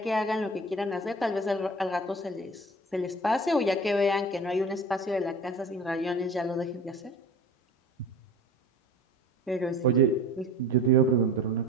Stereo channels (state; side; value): normal; both; correlation 0.39